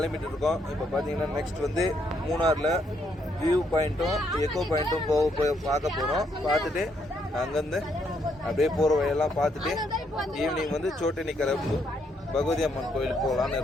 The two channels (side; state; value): both; normal; correlation 0.74